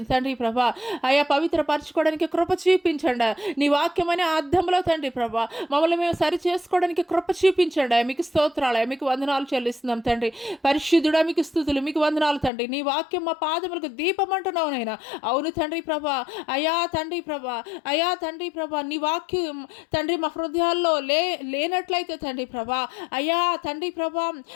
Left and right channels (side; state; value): right; drops out; at 12.5 s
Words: తండ్రి ప్రభా అయ్యా పవిత్రపరచుకోవడానికి కృప చూపించండి. నీ వాక్యం అనే అర్థంలో తండ్రి ప్రభా మమ్మల్ని మేము సరి చేసుకోవడానికి కృప చూపించండి. మీకు స్తోత్రాలయ, మీకు వందనాలు చెల్లిస్తున్నాం తండ్రి. పరిశుద్ధుడా మీకు స్తుతులు, మీకు వందనాలు తండ్రి. నీ వాక్యం మా పాదములకు దీపం అంటున్నావు నైనా. అవును తండ్రి ప్రభా అయ్యా తండ్రి ప్రభా అయ్యా తండ్రి ప్రభా నీ వాక్యం తండ్రి మా హృదయాల్లో లేనట్లయితే తండ్రి ప్రభా అయ్యా తండ్రి ప్రభా